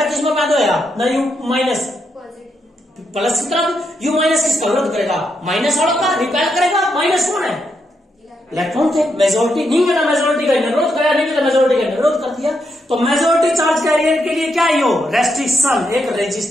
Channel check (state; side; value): normal; both; correlation 0.81